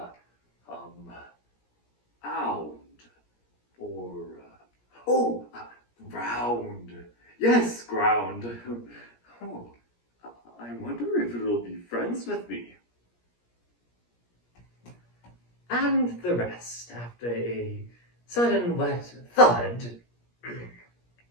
ound or, round. Yes, ground. Oh, I wonder if it'll be friends with me. And the rest, after a sudden wet thud,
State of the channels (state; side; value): late; right; 17 ms